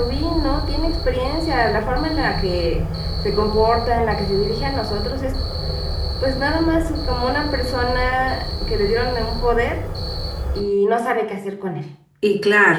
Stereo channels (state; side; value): identical; both; correlation 1.00